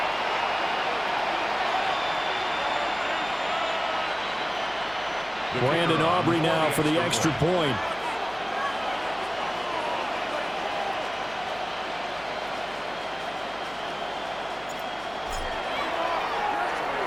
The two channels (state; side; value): noise; right; hum, 22 dB below the sound